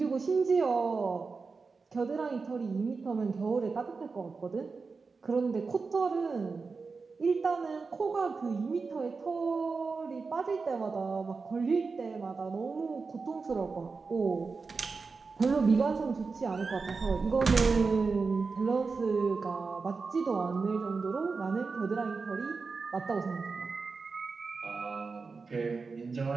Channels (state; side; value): quieter; left; 4.5 dB